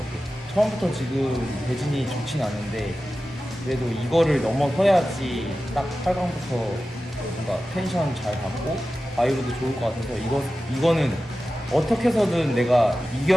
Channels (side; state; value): both; normal; correlation 0.94